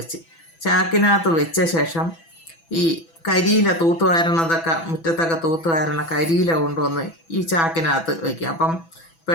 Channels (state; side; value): late; right; 6.1 ms